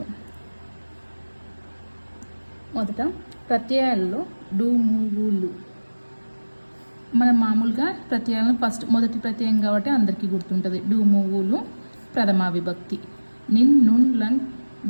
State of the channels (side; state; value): both; inverted; correlation -1.00